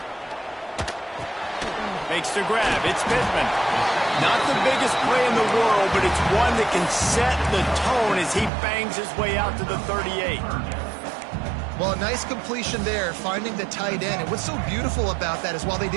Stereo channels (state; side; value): drops out; left; at 8.5 s